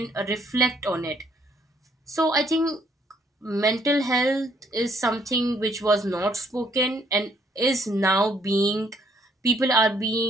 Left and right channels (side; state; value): both; normal; correlation 0.67